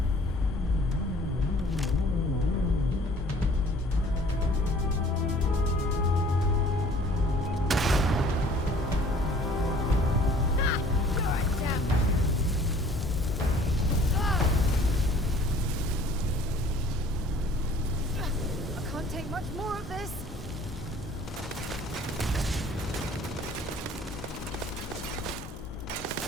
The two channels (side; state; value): both; normal; correlation 0.53